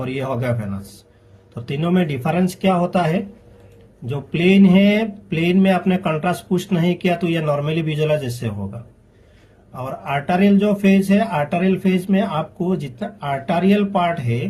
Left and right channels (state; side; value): identical; both; correlation 1.00